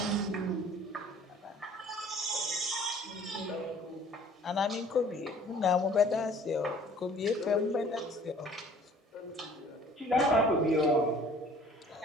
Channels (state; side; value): normal; both; correlation 0.53